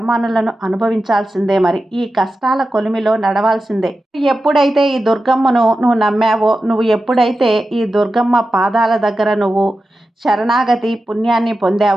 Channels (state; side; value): normal; both; correlation 0.92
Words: అనుభవించాల్సిందే. మరి ఈ కష్టాల కొలిమిలో నడవాల్సిందే. ఎప్పుడైతే ఈ దుర్గమ్మను నువ్వు నమ్మావో, నువ్వు ఎప్పుడైతే ఈ దుర్గమ్మ పాదాల దగ్గర నువ్వు శరణాగతి పుణ్యాన్ని